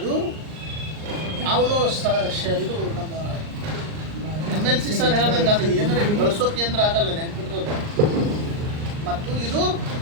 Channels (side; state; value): left; late; 39 ms